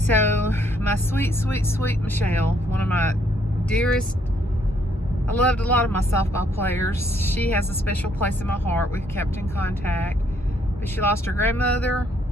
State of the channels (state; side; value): normal; both; correlation 0.69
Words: my sweet, sweet, sweet Michelle, one of my dearest, I loved a lot of my softball players. She has a special place in my heart. We've kept in contact, but she lost her grandmother